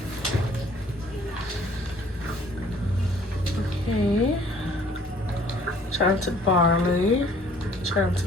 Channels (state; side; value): normal; both; correlation 0.57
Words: Okay. Chanted barley,